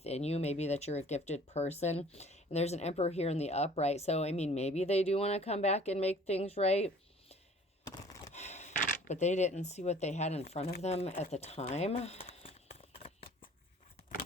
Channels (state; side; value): normal; both; correlation 0.51